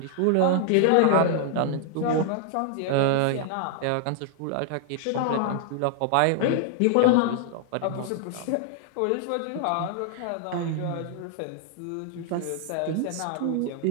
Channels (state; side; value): different; both; correlation -0.01